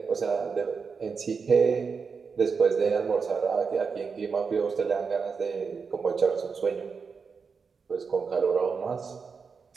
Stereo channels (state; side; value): quieter; left; 5.4 dB